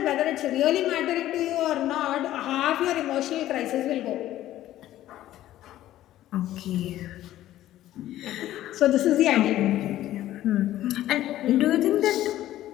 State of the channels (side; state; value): right; quieter; 13.8 dB